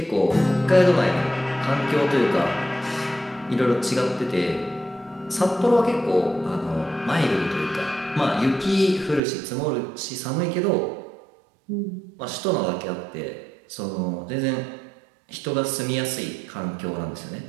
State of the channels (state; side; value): drops out; left; at 9.2 s